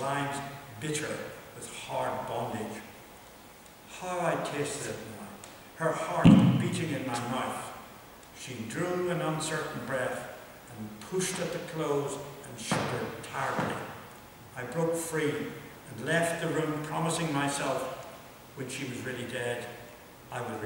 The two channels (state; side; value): identical; both; correlation 1.00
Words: bitter with hard bondage. How I tasted it now, her heart beating in my mouth. She drew an uncertain breath and pushed at the clothes and shuddered tiredly. I broke free and left the room, promising myself, when she was really dead, I would